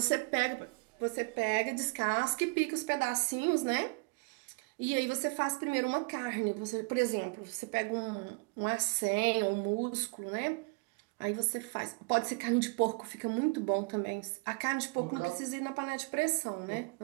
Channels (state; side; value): quieter; left; 30.7 dB